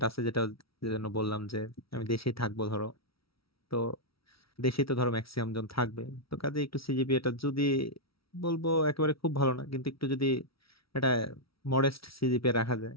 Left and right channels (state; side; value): late; right; 0.75 ms